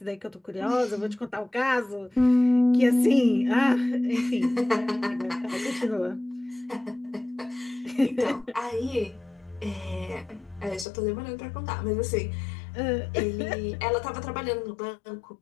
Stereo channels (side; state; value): right; drops out; at 10.9 s